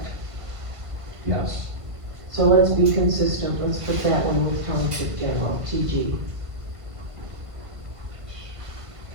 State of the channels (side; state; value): left; late; 1.5 ms